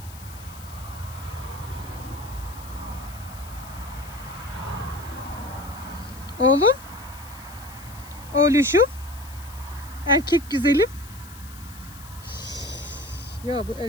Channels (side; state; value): left; noise; hiss, 18 dB below the sound